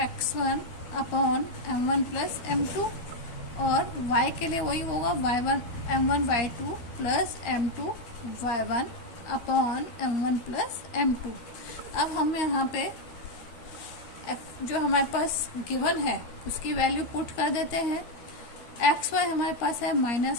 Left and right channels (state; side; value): late; right; 12 ms